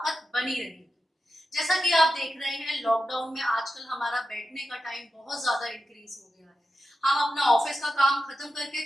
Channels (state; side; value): normal; both; correlation 0.90